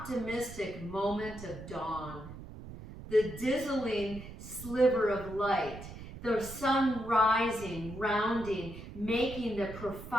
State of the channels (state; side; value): noise; right; rumble, 13 dB below the sound